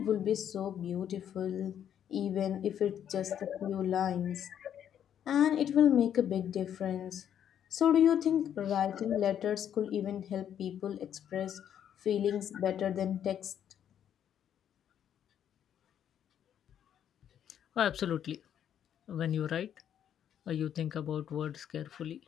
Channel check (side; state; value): right; quieter; 9.6 dB